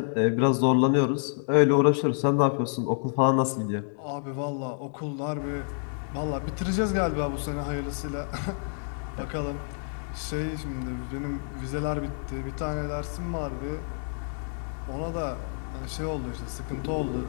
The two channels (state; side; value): silent; right; digital silence